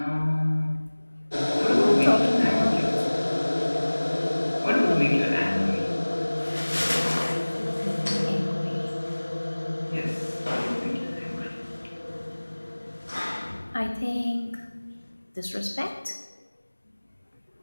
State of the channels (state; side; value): inverted; both; correlation -1.00